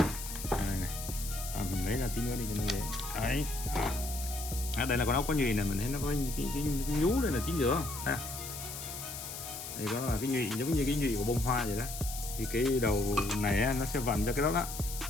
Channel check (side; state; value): left; noise; hiss, 8 dB below the sound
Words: Mình lấy ra tí nữa đi cho nó dễ. Đấy. Đây là con ốc có nhụy này, mình thấy nó có cái nhú đây là chính giữa ha. Đây có là cái nhụy giống như cái nhụy của bông hoa vậy đó. Thì cái đầu này nó sẽ vặn cho cái đó đó.